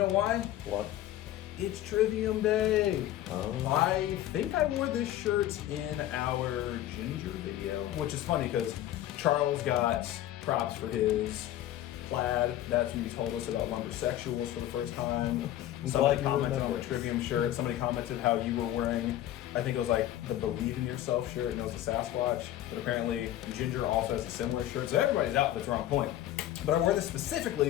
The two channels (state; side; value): quieter; right; 13.2 dB